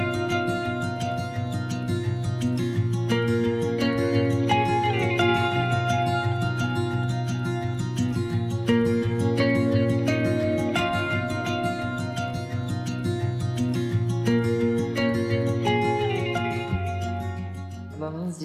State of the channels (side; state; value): both; identical; correlation 1.00